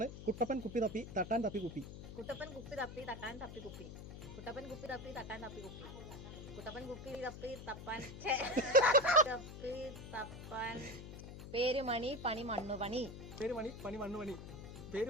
കുട്ടപ്പൻ കുപ്പി തപ്പി തട്ടാൻ തപ്പി കുപ്പി. കുട്ടപ്പൻ കുപ്പി തപ്പി തട്ടാൻ തപ്പി കുപ്പി. കുട്ടപ്പൻ കുപ്പി തപ്പി തട്ടാൻ തപ്പി കുപ്പി. കുട്ടപ്പൻ കുപ്പി തപ്പി തപ്പാൻ തപ്പി തപ്പാൻ. പേരുമണി പണി മണ്ണു പണി. പേരുമണി പണി മണ്ണു പണി.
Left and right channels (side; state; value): left; noise; hum, 11 dB below the sound